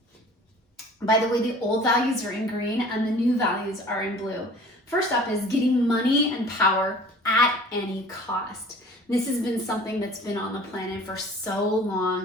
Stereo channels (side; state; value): both; normal; correlation 0.47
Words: by the way, the old values are in green and the new values are in blue. First up is getting money and power at any cost. This has been something that's been on the planet for so